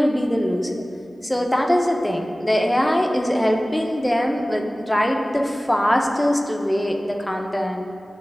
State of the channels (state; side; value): normal; both; correlation 0.97